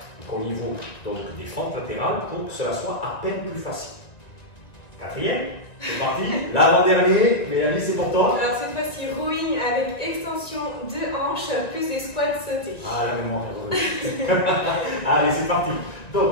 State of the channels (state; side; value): late; right; 1.9 ms